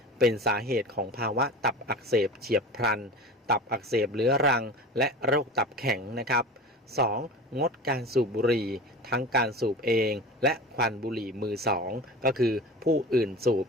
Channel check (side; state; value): both; normal; correlation 0.34